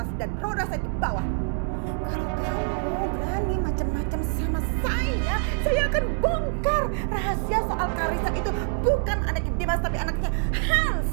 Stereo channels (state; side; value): silent; left; 61 dB below the other